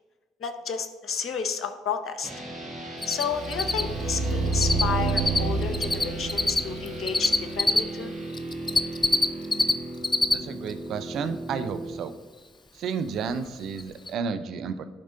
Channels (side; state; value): both; normal; correlation 0.74